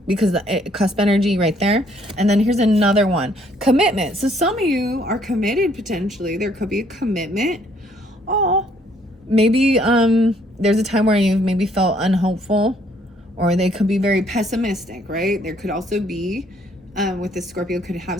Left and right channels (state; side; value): normal; both; correlation 0.65